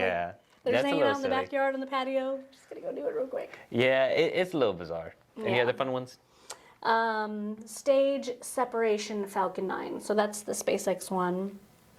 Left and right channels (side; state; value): both; identical; correlation 1.00